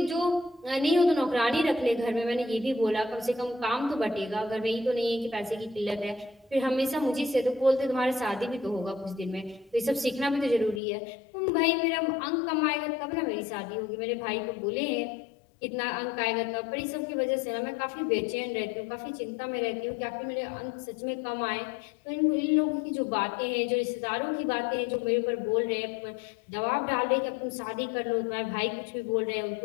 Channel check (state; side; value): drops out; right; at 10.8 s